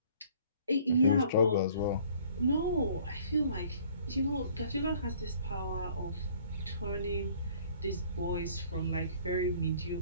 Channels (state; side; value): inverted; both; correlation -0.56